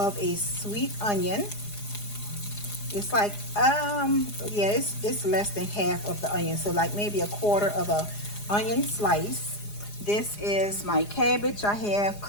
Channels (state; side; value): late; right; 4.9 ms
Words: a sweet onion. It's like, yeah, it's less than half of the onion. So like maybe a quarter of a onion slice. This is my cabbage I have